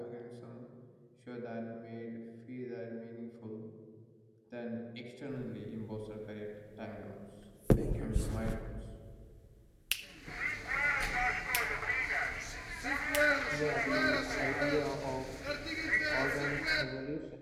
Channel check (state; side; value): identical; both; correlation 1.00